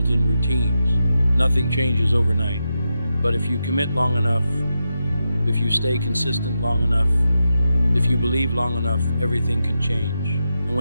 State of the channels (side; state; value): both; inverted; correlation -0.87